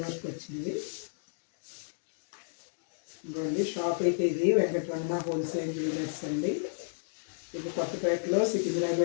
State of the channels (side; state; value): right; silent; digital silence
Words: వర్క్ వచ్చింది. ఇదండి షాప్ అయితే ఇది వెంకటరమణ హోల్సేల్ జ్యువెలర్స్ అండి. ఇది కొత్తపేటలో